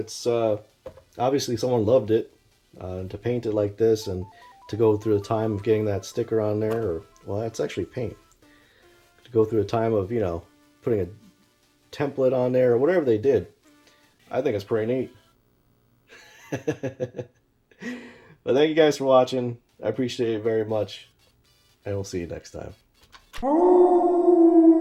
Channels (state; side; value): identical; both; correlation 1.00